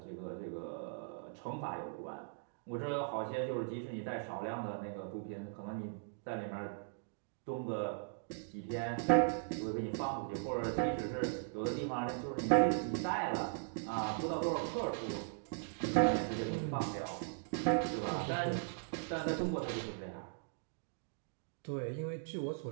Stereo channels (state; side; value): silent; left; digital silence